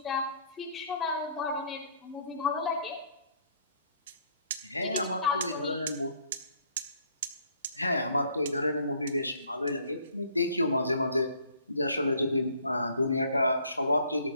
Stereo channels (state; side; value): inverted; both; correlation -0.61